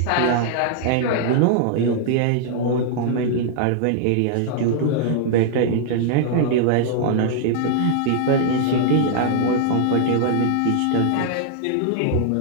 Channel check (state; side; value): different; both; correlation -0.01